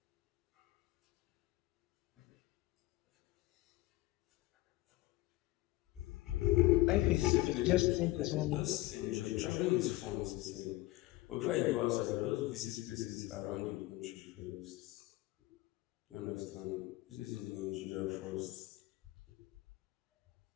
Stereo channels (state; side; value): quieter; right; 18.5 dB